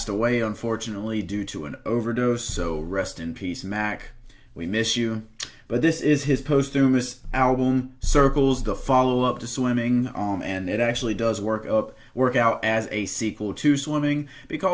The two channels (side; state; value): both; identical; correlation 1.00